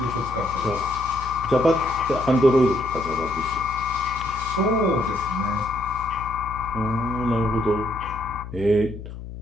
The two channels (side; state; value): left; noise; hum, 11 dB below the sound